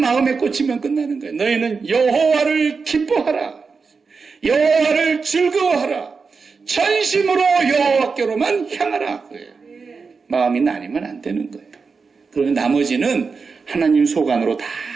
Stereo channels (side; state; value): left; quieter; 4.9 dB